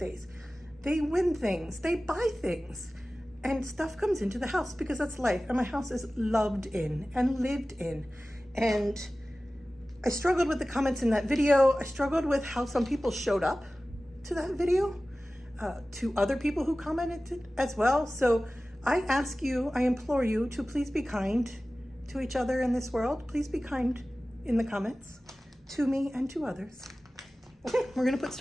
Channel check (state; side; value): normal; both; correlation 0.96